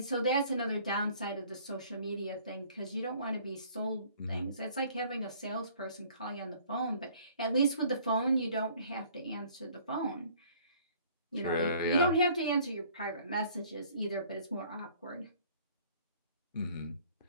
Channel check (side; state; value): both; inverted; correlation -0.55